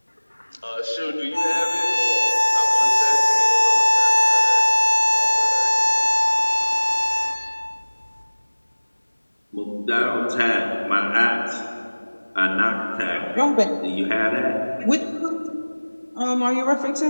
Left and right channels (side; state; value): both; inverted; correlation -1.00